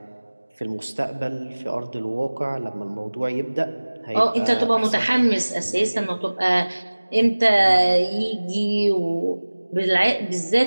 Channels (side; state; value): both; inverted; correlation -1.00